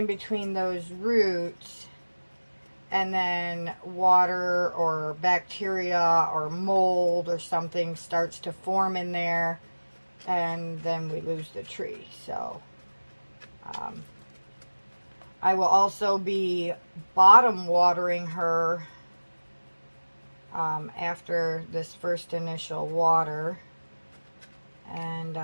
between those roots, and then water or bacteria or mold or something starts to form in there, and then we lose the tree. So I will also be bottom watering her after this first initial water, and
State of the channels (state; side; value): inverted; both; correlation -1.00